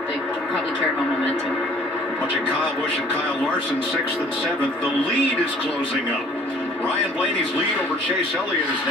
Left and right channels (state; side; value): normal; both; correlation 0.54